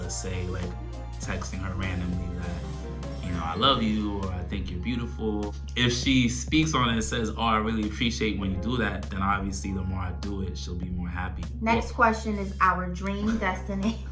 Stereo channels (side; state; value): both; identical; correlation 1.00